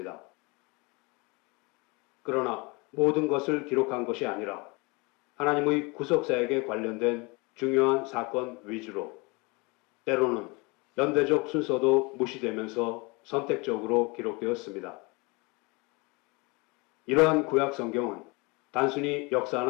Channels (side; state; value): right; quieter; 27.4 dB